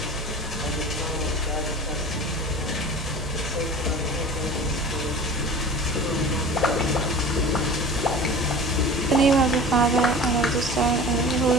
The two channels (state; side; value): normal; both; correlation 0.39